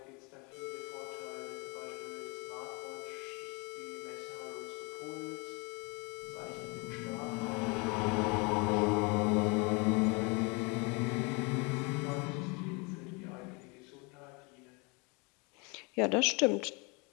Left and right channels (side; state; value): right; quieter; 30.1 dB